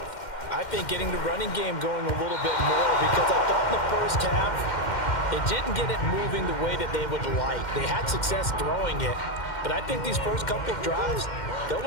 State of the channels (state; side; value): late; right; 2.1 ms